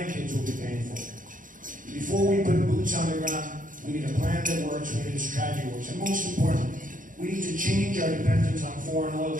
will be paying for. Before we put boots on the ground, we need a plan that works, we need a strategy that works. And most importantly, we need to change our dependence on foreign oil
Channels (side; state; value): left; late; 0.39 ms